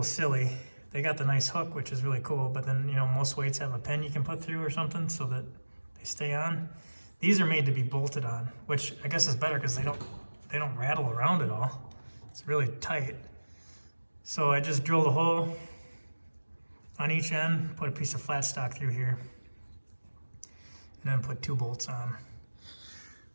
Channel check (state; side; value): inverted; both; correlation -1.00